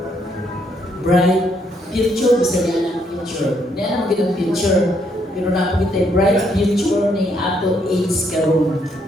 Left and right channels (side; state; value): both; normal; correlation 0.72